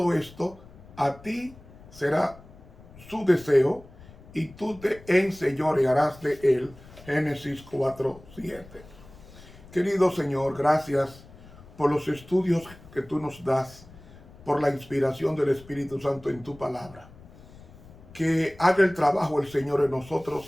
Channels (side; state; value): left; noise; rumble, 21 dB below the sound